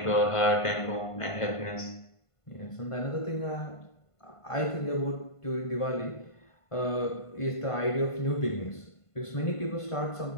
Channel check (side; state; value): right; late; 1.5 ms